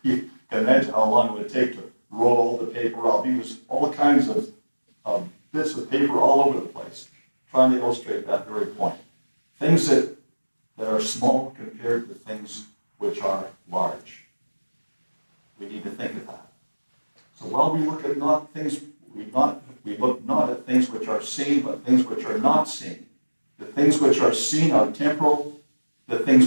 You can imagine how long it would take to roll all the paper out. He was all kinds of bits of paper all over the place, trying to illustrate that very point. Things that are small compared to things which are large. We need to think of that. So while we look at we look not at things which are seen, but things which are not seen. The things which are seen are temporal. The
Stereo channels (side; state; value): both; inverted; correlation -1.00